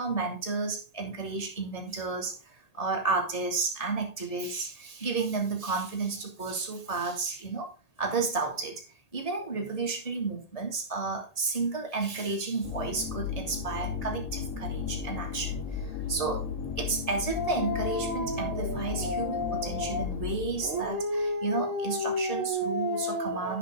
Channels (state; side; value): late; right; 1.7 ms